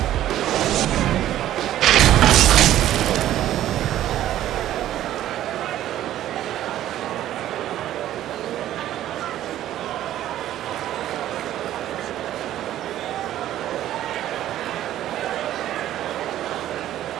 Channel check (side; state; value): left; quieter; 12.8 dB